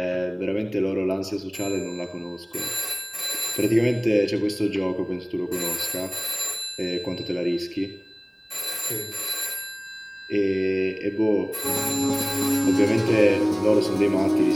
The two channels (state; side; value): identical; both; correlation 1.00